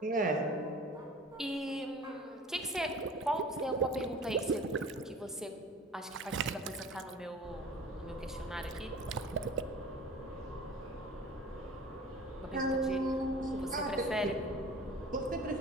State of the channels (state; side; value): normal; both; correlation 0.42